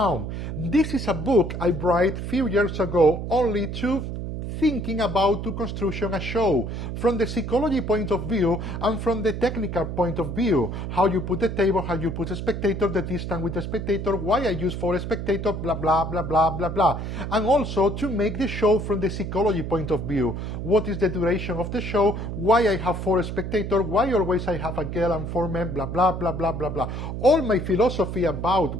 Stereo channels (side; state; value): right; noise; hum, 5 dB below the sound